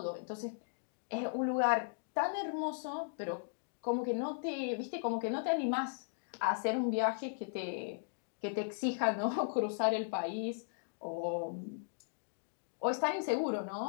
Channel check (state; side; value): silent; right; digital silence